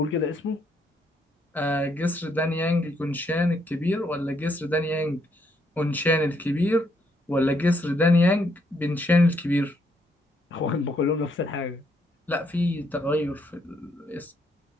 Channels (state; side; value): normal; both; correlation 0.73